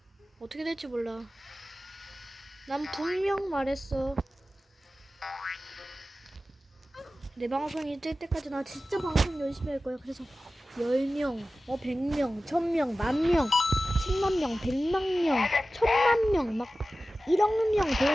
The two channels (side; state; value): both; normal; correlation 0.95